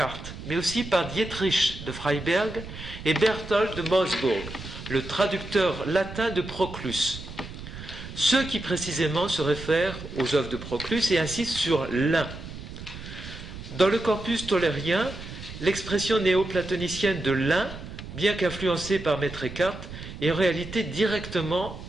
mais aussi par Dietrich de Freiberg et Berthold de Moosburg, le traducteur latin de Proclus. Ceux qui précisément se réfèrent aux œuvres de Proclus et insistent sur l'un. Dans le corpus tollérien, l'expression néoplatonicienne de l'un, bien qu'influencée par Maître Eckhart, est en réalité directement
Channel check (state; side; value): noise; right; rumble, 12 dB below the sound